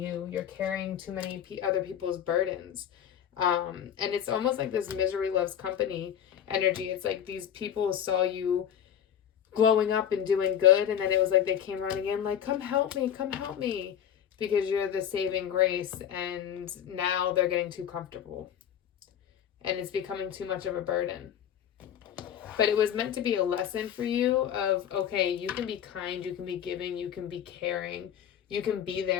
You're carrying too many other people's burdens. And it's almost like this misery loves company energy. It's like these people saw you growing up and doing good, and then it was like they came running in like, come help me, because you're the saving grace, and now they're getting too comfortable. And it's becoming too much of a burden. But it was meant to be a lesson for you of, okay, you can be kind, you can be giving, you can be caring, you can be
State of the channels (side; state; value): right; quieter; 9.4 dB